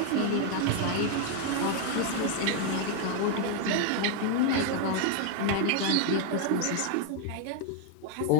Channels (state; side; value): different; both; correlation 0.00